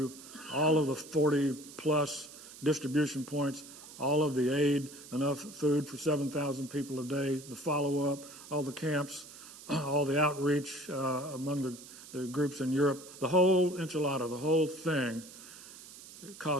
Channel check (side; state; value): right; noise; hiss, 17 dB below the sound